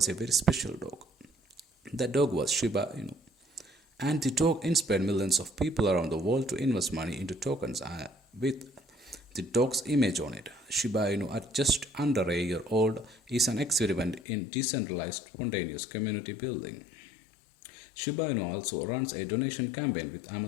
a very special dog. That dog was Shiba Inu. And the dog inspired millions of people around the world to invest money into tokens with the dog's image on it. Shiba Inu, at just under a year old, is an experiment in decentralized spontaneous community building. Shiba Inu also runs a donation campaign with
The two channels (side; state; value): right; drops out; at 14.2 s